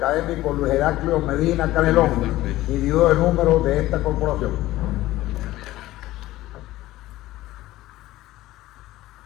Luis Heraclio Medina Canelón, individuo de número de esta corporación.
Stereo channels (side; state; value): right; quieter; 16.3 dB